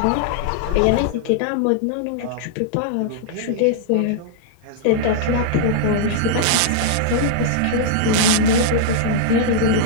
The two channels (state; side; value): different; both; correlation -0.01